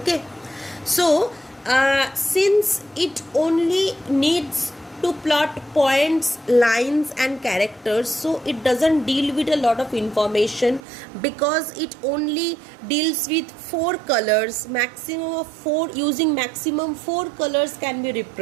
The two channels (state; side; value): drops out; left; at 10.8 s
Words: so since it only needs to plot points, lines and characters, so it doesn't deal with a lot of information, because it only deals with 4 colors, maximum of 4, using maximum 4 colors can be